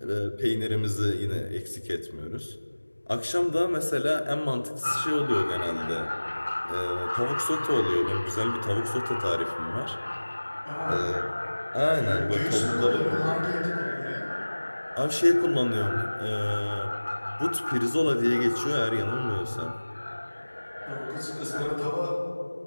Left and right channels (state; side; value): inverted; both; correlation -1.00